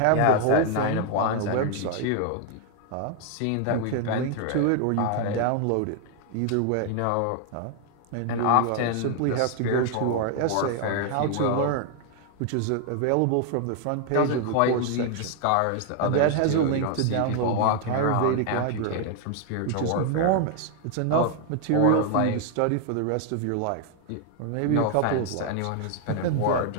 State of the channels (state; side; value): different; both; correlation 0.00